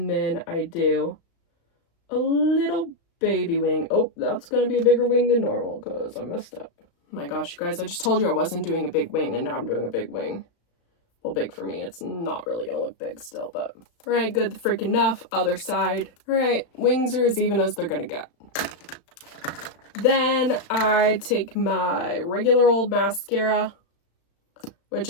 then I do a little baby wing. Oh, that's gonna be a bigger wing than normal because I messed up. Oh my gosh, you guys, I just told you I wasn't doing a big wing and now I'm doing a big wing. Well, big for me. It's not really gonna look big still, but all right, good freaking enough. Other side. All right, wings are as even as they're gonna get. Then I take my regular old mascara, which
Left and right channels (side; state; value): right; late; 35 ms